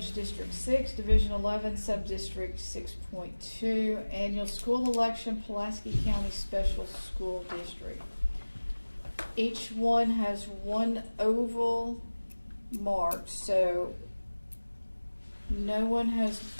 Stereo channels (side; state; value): both; inverted; correlation -1.00